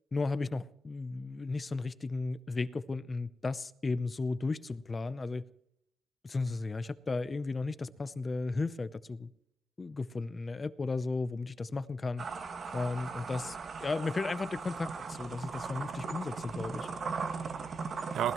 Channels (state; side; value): normal; both; correlation 0.90